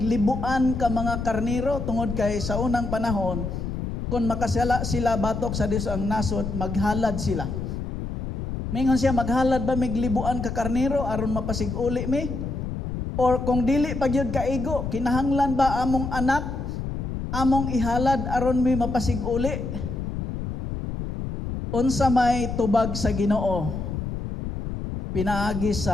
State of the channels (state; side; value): noise; left; rumble, 5 dB below the sound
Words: libuan ka mga karniro tungod kay sa unang panahon kung makasala sila batok sa Dios ang nasod, maghalad sila. Mingon siya, maghalad ba mig libuan ka karniro aron mapasig-uli mi? Or kung dili pagyud kaigo, kinahanglan ba among anak among ihalad aron mi mapasig-uli? Unsa may tubag sa Ginoo pinaagi